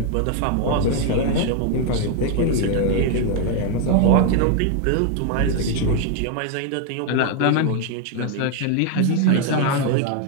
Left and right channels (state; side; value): different; both; correlation 0.00